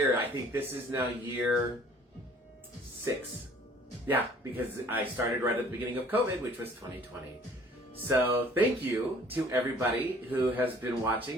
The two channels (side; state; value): both; normal; correlation 0.54